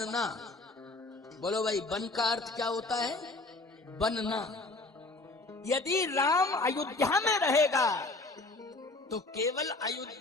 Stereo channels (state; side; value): quieter; right; 3.2 dB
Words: बोलो भाई, वन का अर्थ क्या होता है? बनना। यदि राम अयोध्या में रहेगा तो केवल